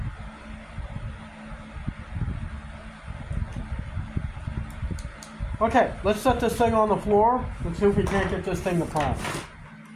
Okay, let's set this thing on the floor and see if we can't get this thing to prime.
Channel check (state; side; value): identical; both; correlation 1.00